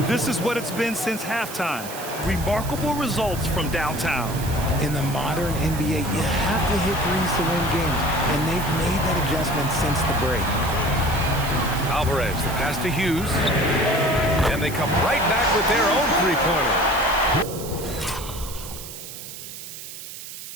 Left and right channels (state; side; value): noise; right; hiss, 11 dB below the sound